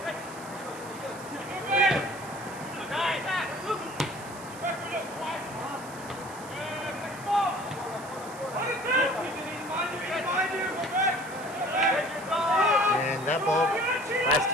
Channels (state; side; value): noise; right; hiss, 17 dB below the sound